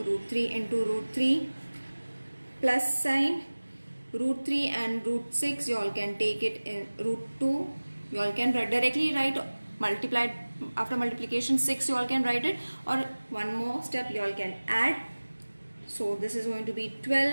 3 into root 3 plus sign root 3 and root 6, you all can take it in root 2. You all can directly write multiplied, after multiplication 6 you all can write it, or one more step you all can add. So this is going to be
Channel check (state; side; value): inverted; both; correlation -1.00